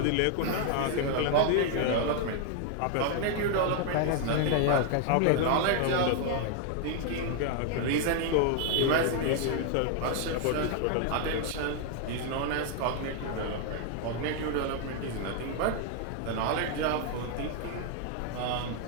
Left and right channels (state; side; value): different; both; correlation 0.00